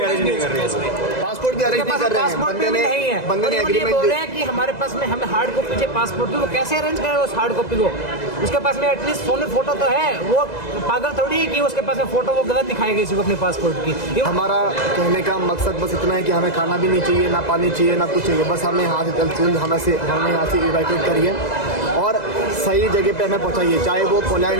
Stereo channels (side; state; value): right; late; 2.0 ms